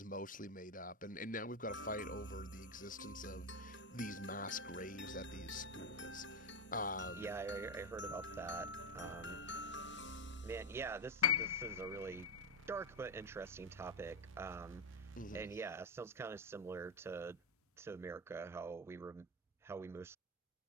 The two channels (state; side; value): normal; both; correlation 0.09